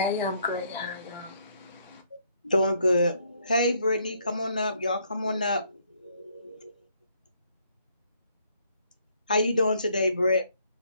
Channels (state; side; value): inverted; both; correlation -0.69